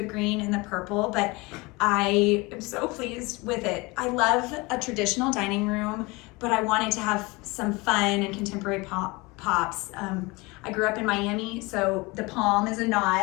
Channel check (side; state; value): right; quieter; 24.7 dB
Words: green and the purple, but I am so pleased with it. I love a traditional dining room, but I wanted to have some fun and contemporary pops. I grew up in Miami, so the palm is a